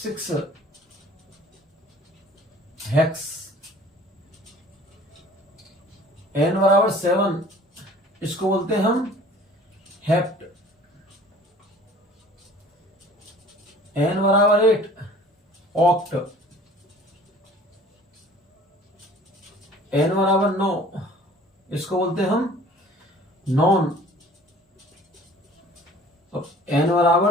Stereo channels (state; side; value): normal; both; correlation 0.49